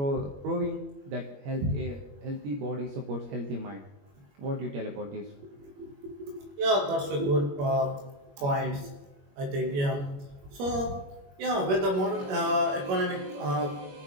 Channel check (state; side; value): late; left; 21 ms